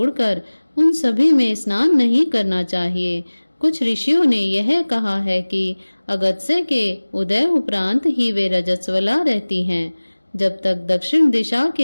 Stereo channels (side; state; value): both; inverted; correlation -1.00